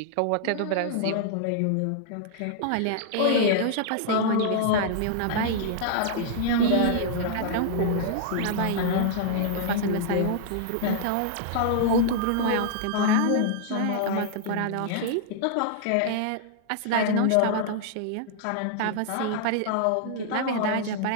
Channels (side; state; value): both; different; correlation -0.01